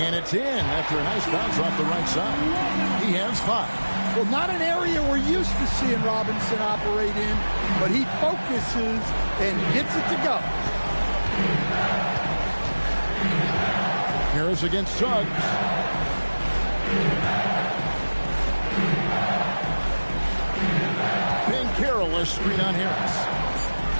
it's in after a nice bounce off the right side. He has 5. Well, not an area we're used to seeing Robinson operate in, but he focuses and gets it to go. Harris against Suggs. Banchero, a screen on Harris.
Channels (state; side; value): inverted; both; correlation -1.00